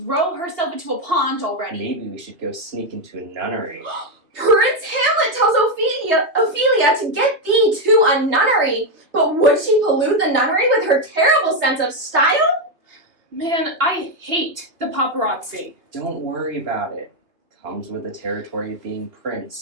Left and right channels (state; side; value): late; left; 2.7 ms